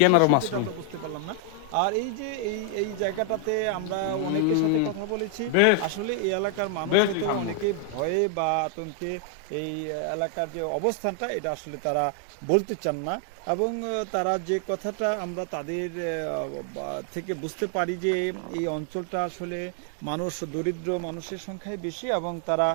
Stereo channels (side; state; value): both; different; correlation 0.00